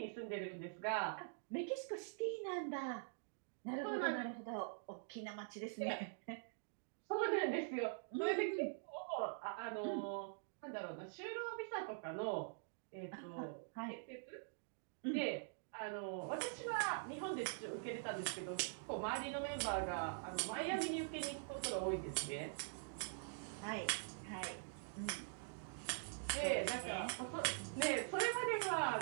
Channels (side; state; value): left; silent; digital silence